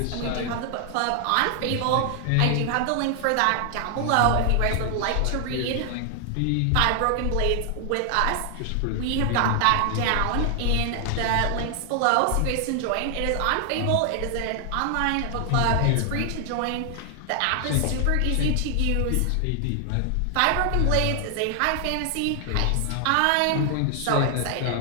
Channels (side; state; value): both; different; correlation 0.00